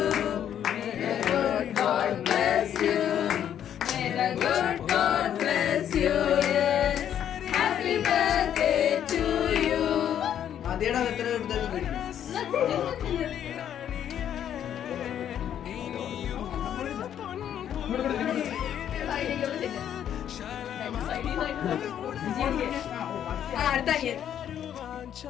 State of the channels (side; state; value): right; quieter; 9.9 dB